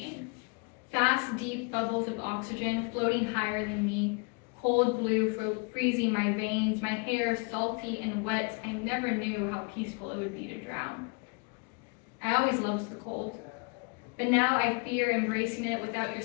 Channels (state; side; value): quieter; right; 33.4 dB